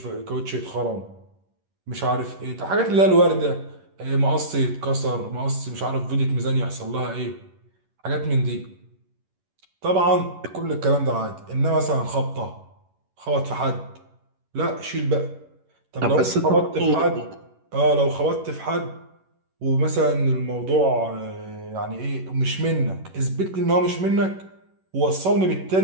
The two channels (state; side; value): late; left; 11 ms